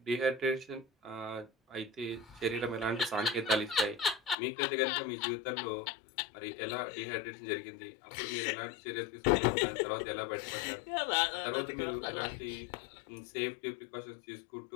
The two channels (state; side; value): drops out; right; at 4.4 s